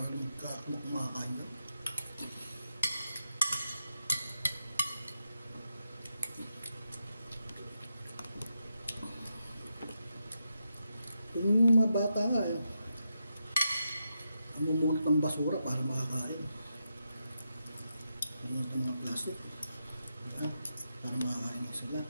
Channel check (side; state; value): both; inverted; correlation -0.86